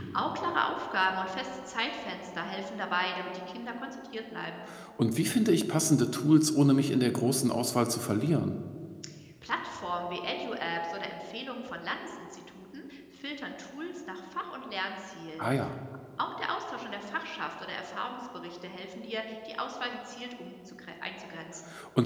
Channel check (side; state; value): both; identical; correlation 1.00